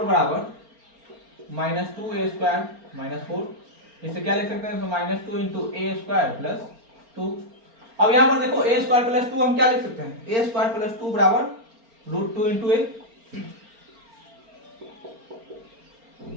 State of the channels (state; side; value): late; left; 4.4 ms